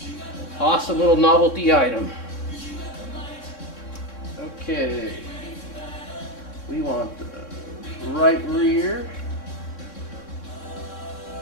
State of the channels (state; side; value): late; right; 3.6 ms